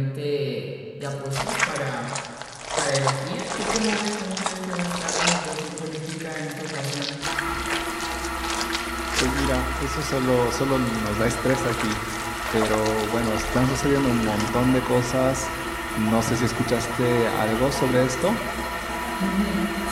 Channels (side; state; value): both; identical; correlation 1.00